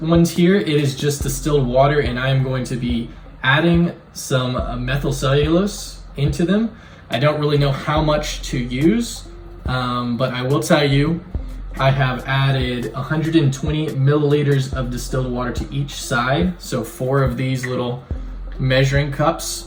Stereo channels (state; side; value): identical; both; correlation 1.00